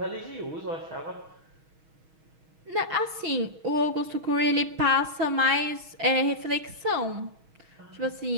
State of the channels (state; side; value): late; left; 6.3 ms